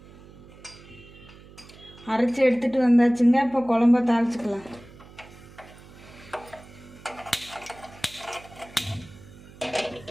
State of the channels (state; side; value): noise; right; hum, 20 dB below the sound